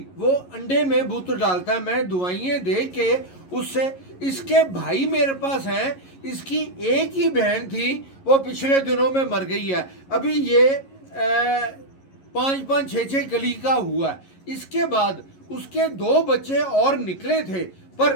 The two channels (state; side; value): late; right; 11 ms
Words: وہ انڈے میں بت ڈالتا ہے میں دوائیں دے کے اس سے اس کے بھائی میرے پاس ہیں اس کی ایک ہی بہن تھی وہ پچھلے دنوں میں مر گئی ہے ابھی یہ 5-6 کلی کا ہوا ہے اس کے بعد اس کے 2 بچے اور نکلے تھے پر